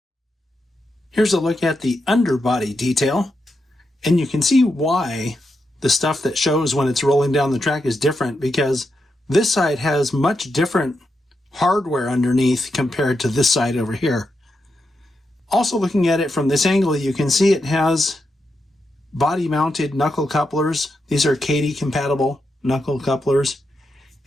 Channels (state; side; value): normal; both; correlation 0.85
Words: Here's a look at the underbody detail, and you can see why the stuff that shows when it's rolling down the track is different, because this side has much different hardware underneath compared to this side over here. Also, looking at it from this angle, you can see it has body-mounted knuckle couplers. These are Kadee-compatible knuckle couplers.